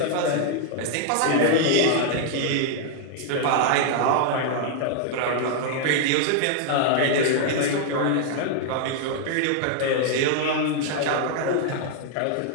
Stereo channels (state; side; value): different; both; correlation 0.00